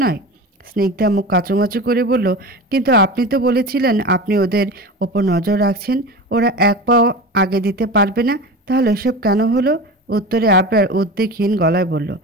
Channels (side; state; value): both; normal; correlation 0.30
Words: নয়? স্নিগ্ধা মুখ কাঁচুমাচু করে বলল, কিন্তু আপনি তো বলেছিলেন আপনি ওদের ওপর নজর রাখছেন, ওরা এক পাও আগে দিতে পারবে না, তাহলে এসব কেন হলো? উত্তরে আবরার উদ্বেগহীন গলায় বলল,